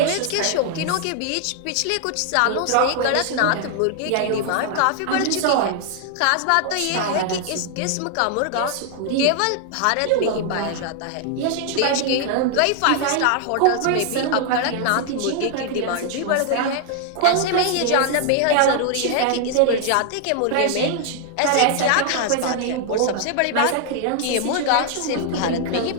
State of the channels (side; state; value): both; different; correlation 0.00